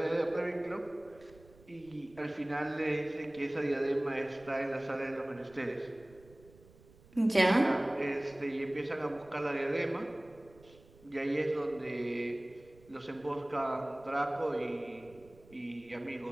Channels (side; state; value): right; noise; rumble, 25 dB below the sound